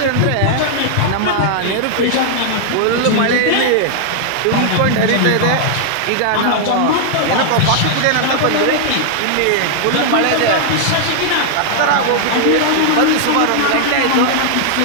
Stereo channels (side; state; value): both; different; correlation -0.01